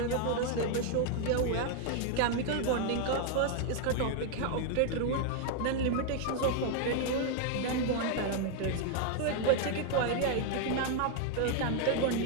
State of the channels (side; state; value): both; different; correlation 0.00